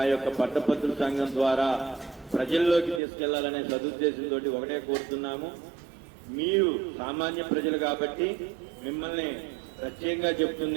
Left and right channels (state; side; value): drops out; left; at 3.0 s